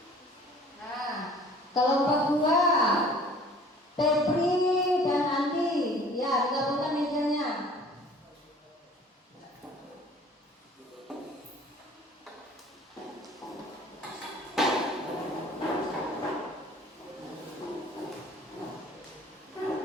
Kelompok 2 Febri dan Andi. Ya, digabungkan mejanya.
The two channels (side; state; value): both; normal; correlation 0.50